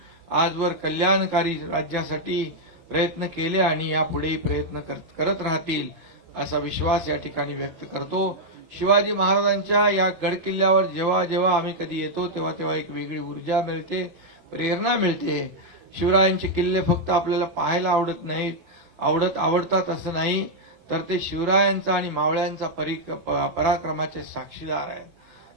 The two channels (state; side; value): late; left; 23 ms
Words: आजवर कल्याणकारी राज्यासाठी प्रयत्न केले आणि यापुढेही प्रयत्न करत राहतील असा विश्वास या ठिकाणी व्यक्त करतो. शिवाजी महाराजांच्या या गडकिल्ल्यावर जेव्हा जेव्हा आम्ही कधी येतो तेव्हा तेव्हा एक वेगळी ऊर्जा मिळते, प्रेरणा मिळते. शिवरायांचे किल्ले फक्त आपल्याला पाहायला आवडत नाहीत, आवडतात असं नाही, तर ते शिवरायांचा आणि मावळ्यांचा पराक्रमाचे साक्षीदार आहेत.